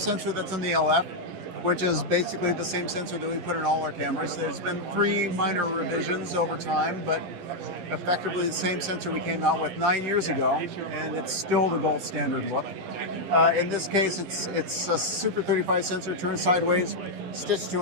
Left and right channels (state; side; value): late; left; 11 ms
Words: that's in the LF, which is basically the same sensor that we put in all our cameras. There's been 3 minor revisions over time, but effectively the same sensor we came out with 9 years ago, and it's still the gold standard look. In this case, it's a Super 35 sensor turned sideways, stitched to